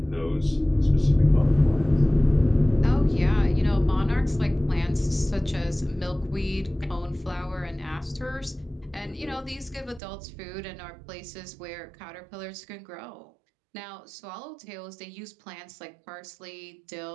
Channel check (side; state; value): left; drops out; at 10.0 s